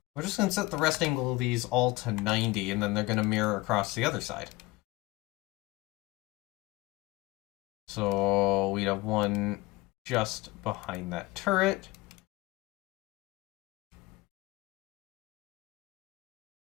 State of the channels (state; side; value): quieter; right; 21.1 dB